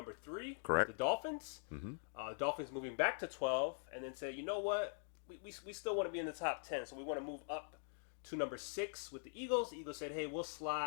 3. Correct. The Dolphins. Mm-hmm. Dolphins moving back to 12 and then say, you know what? We still want to be in the top 10, so we want to move up to number 6 with the Eagles. The Eagles said, hey, we'll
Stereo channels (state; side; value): silent; right; digital silence